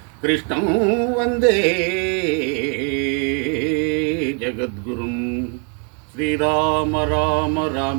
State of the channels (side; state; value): left; quieter; 39.2 dB